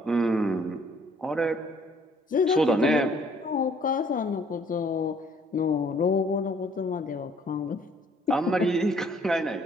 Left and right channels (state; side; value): normal; both; correlation 0.61